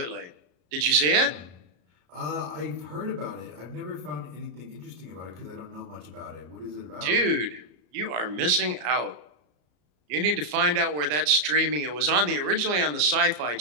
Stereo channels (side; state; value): left; late; 33 ms